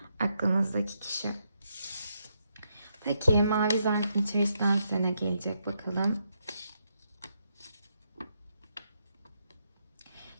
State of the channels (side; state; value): both; inverted; correlation -0.80